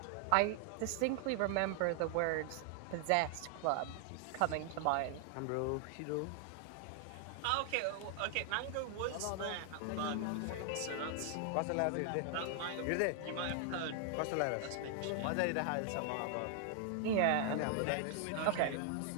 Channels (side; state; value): both; different; correlation 0.00